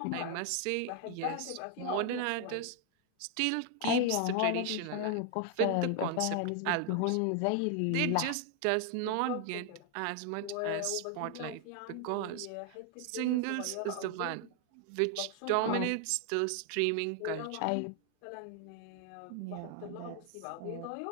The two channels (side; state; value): both; different; correlation 0.00